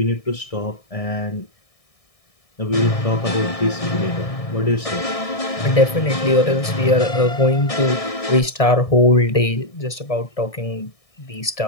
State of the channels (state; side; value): late; right; 1.6 ms